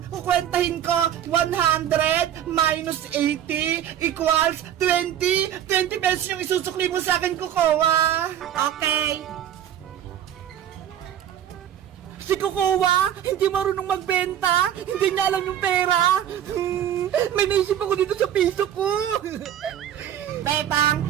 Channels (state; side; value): quieter; left; 10.5 dB